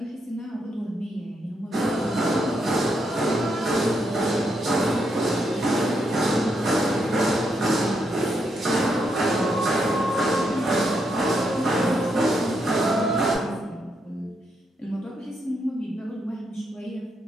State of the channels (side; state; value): both; normal; correlation 0.79